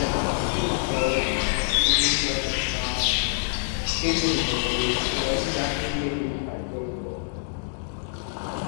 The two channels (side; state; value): right; silent; digital silence